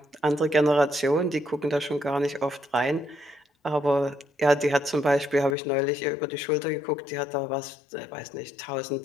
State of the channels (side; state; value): right; drops out; at 5.6 s